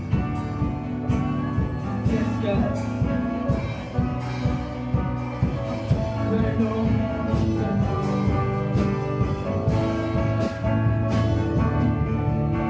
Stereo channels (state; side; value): identical; both; correlation 1.00